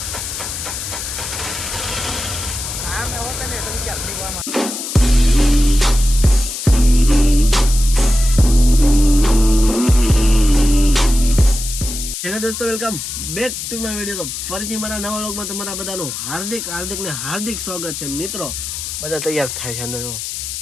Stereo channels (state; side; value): noise; left; hiss, 6 dB below the sound